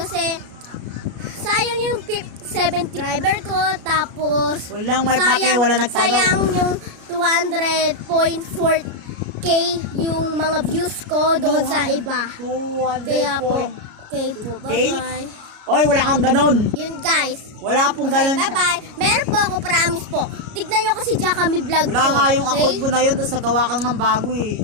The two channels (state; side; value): late; left; 33 ms